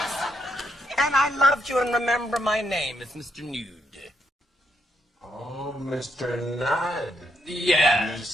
And I loved you, and remember my name is Mr. Nude. Oh, Mr. Nudd. Yeah. You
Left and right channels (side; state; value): both; normal; correlation 0.77